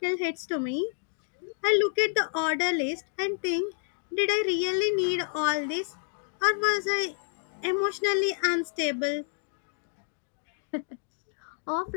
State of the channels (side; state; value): right; silent; digital silence